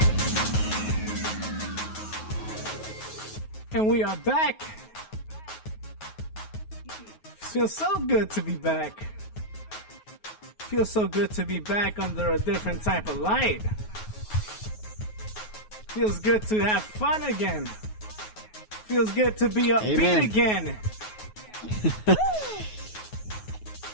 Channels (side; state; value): right; late; 9.4 ms